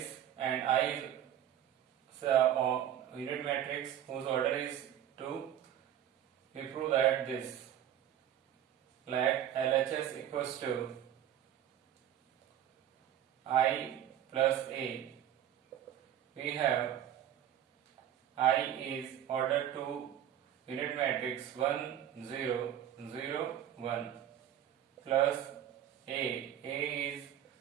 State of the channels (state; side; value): quieter; left; 10.8 dB